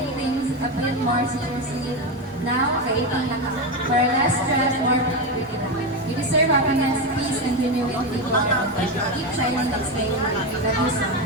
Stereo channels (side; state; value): both; normal; correlation 0.13